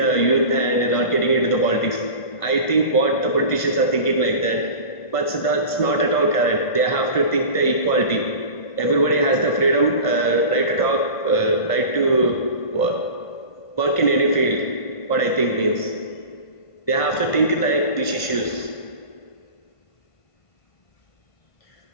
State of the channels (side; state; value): right; late; 1.5 ms